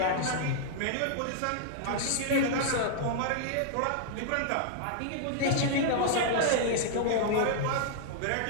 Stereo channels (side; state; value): both; different; correlation -0.01